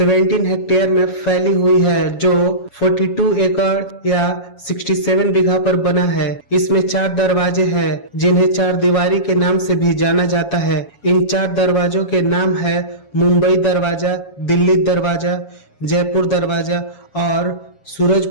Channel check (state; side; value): late; right; 7.2 ms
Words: हेक्टेयर में फैली हुई है जो 42 एकड़ या 67 बीघा पर बना है। इसमें 4 दरवाजे हैं जिन्हें 4 दीवारी के नाम से भी जाना जाता है। इन 4 दरवाजों के नाम है मुंबई दरवाजा, दिल्ली दरवाजा, जयपुर दरवाजा और